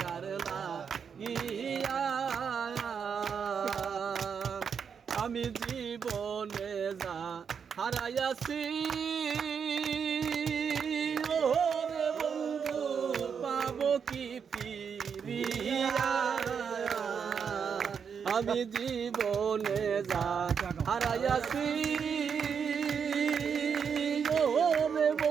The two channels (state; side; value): quieter; left; 6.8 dB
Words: কার লাগিয়া আমি জীবনে যা হারাইয়াছি ওরে বন্ধু পাবো কি ফিরিয়া আমি জীবনে যা হারাইয়াছি ওরে